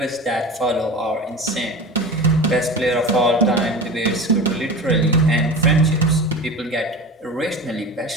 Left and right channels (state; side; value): normal; both; correlation 0.31